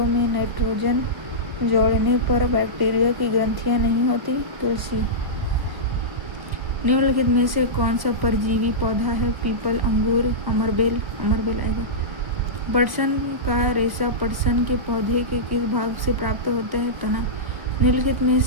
में नाइट्रोजन जोड़ने पर बैक्टीरिया की ग्रंथियां नहीं होती? तुलसी। निम्नलिखित में से कौन सा परजीवी पौधा है? पीपल, अंगूर, अमरबेल आएगा। पटसन का रेशा पटसन के पौधे के किस भाग से प्राप्त होता है? तना। निम्नलिखित में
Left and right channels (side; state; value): left; late; 1.1 ms